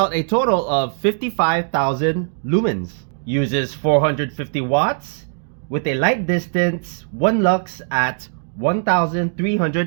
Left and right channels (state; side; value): silent; left; 62 dB below the other